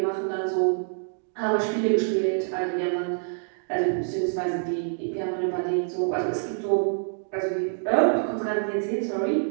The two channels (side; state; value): left; silent; digital silence